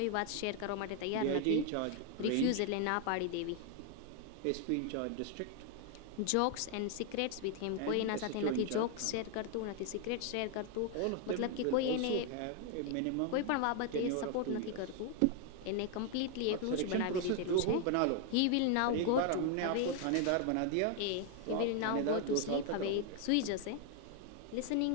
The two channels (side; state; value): both; different; correlation 0.00